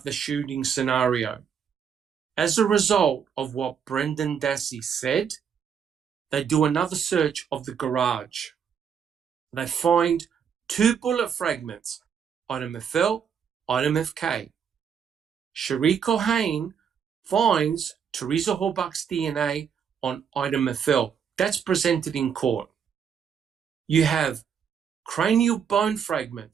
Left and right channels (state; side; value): quieter; left; 7.4 dB